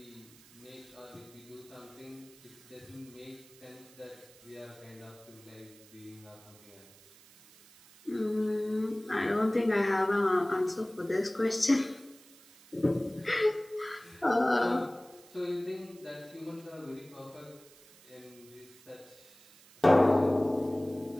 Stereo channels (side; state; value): right; noise; hiss, 24 dB below the sound